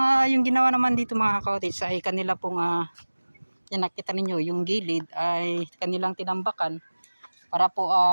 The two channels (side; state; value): both; inverted; correlation -1.00